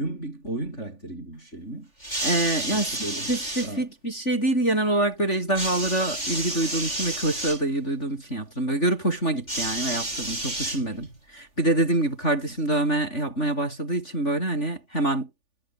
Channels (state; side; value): late; right; 3.4 ms